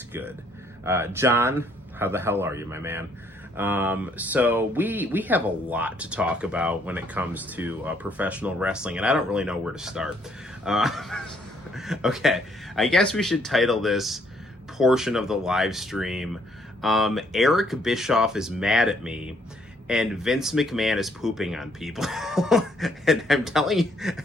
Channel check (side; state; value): both; normal; correlation 0.67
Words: good. John, how the hell are you, my man? So we have a lot to talk about when it comes to professional wrestling, and I don't really know where to start. Okay, I guess we should title this portion of the live stream, Eric Bischoff is mad at me, and Vince McMahon is pooping on people. And I'm telling you,